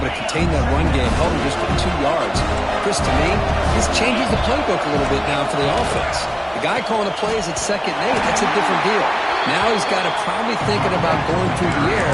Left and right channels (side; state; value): both; identical; correlation 1.00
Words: to contain that run game, held him just for 2 yards. Chris, to me, this changes the playbook a little bit now for the offense. The guy calling the plays at 2nd and 8, that's a different deal. Now he's got to probably thinking about going through the air